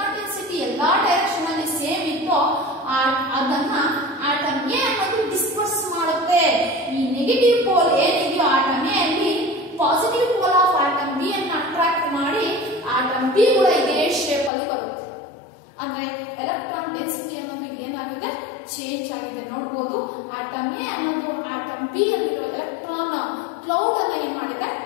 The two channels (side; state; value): right; drops out; at 14.5 s